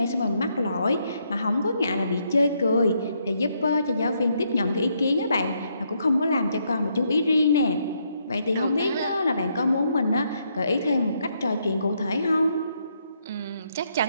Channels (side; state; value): both; inverted; correlation -0.75